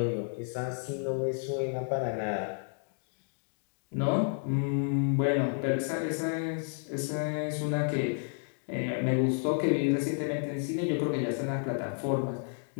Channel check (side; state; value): right; silent; 57 dB below the other